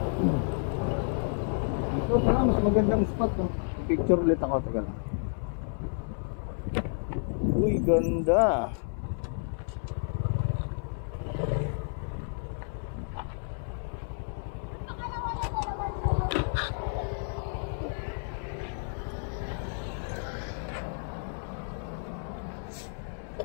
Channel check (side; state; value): right; silent; 57 dB below the other